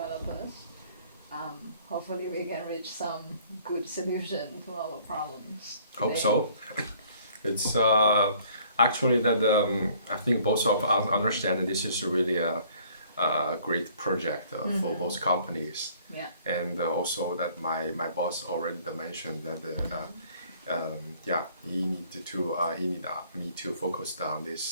Hopefully, we can reach some good solution to our problems. Hope today. so. It's actually that I think both of us understand that this is really a great project for both companies. Yeah. And also that my boss already mentioned that yeah, he need me to focus on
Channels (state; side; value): inverted; both; correlation -0.58